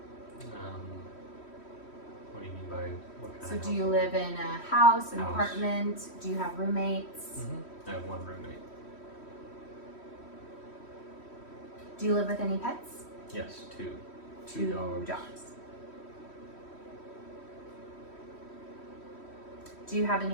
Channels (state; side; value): late; right; 3.1 ms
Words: What do you mean by what kind So of do you household? live in a house, an House. apartment? Do you have roommates? I have one roommate. Do you live with any pets? Yes, two. Two dogs. Do you have